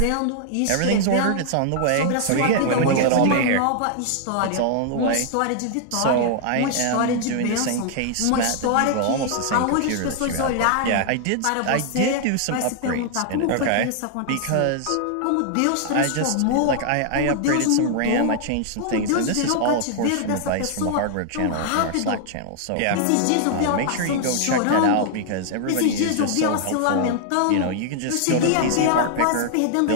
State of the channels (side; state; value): both; different; correlation 0.00